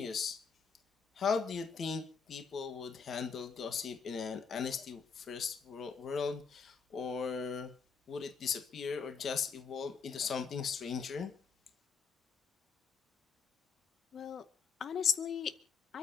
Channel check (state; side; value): quieter; right; 5.8 dB